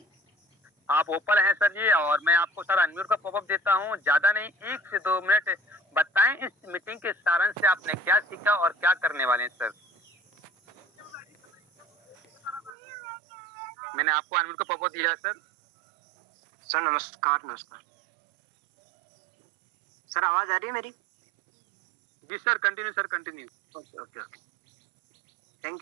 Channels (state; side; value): drops out; left; at 12.7 s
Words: आप ओपन हैं सर जी, और मैं आपको सर अनम्यूट का पॉपअप देता हूं, ज्यादा नहीं 1 से 2 मिनट बताएं इस मीटिंग के सारांश से आपने क्या सीखा और क्या करने वाले हैं सर। मैंने आपको अनम्यूट का पॉपअप दिया है सर। सर नमस्कार। नमस्कार सर, आवाज आ रही है मेरी? जी sir, continue sir, continue. Okay okay okay,